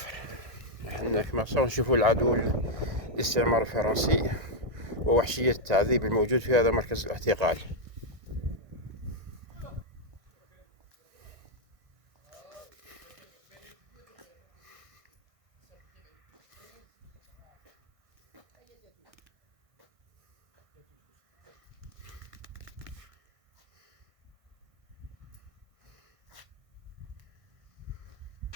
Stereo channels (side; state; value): left; late; 1.6 ms